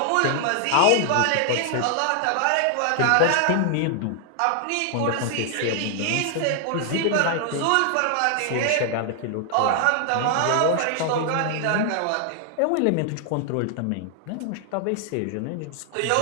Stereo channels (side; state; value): both; different; correlation 0.00